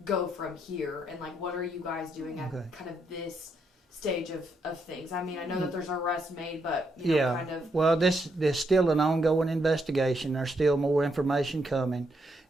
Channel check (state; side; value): normal; both; correlation 0.78